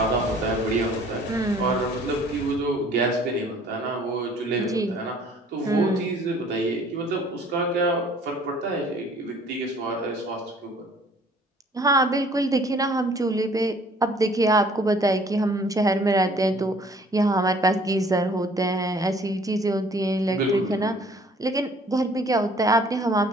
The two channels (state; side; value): normal; both; correlation 0.55